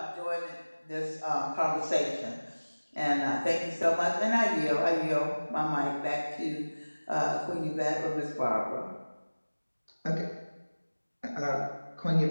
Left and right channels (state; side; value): inverted; both; correlation -1.00